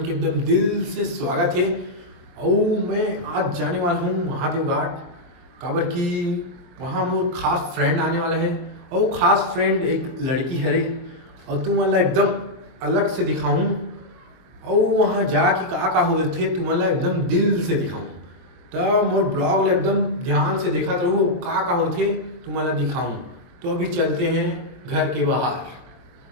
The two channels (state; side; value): late; left; 23 ms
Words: के एकदम दिल से स्वागत है। और मैं आज जाने वाला हूँ महादेव घाट काबर की वहाँ मोर खास फ्रेंड आने वाला है और खास फ्रेंड एक लड़की है और तुम मला एकदम अलग से दिखाऊं और वहाँ जाके का होते तुम मला एकदम दिल से दिखाऊं तो मोर ब्लॉग एकदम ध्यान से देखा रहो का होते तुम मला दिखाऊं। तो अभी चलते हैं घर के बाहर,